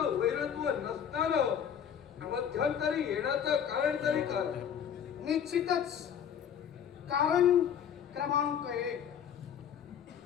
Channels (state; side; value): quieter; right; 8.5 dB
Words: वैरत्व नसताना मध्यंतरी येण्याचं कारण तरी काय? निश्चितच कारण क्रमांक 1,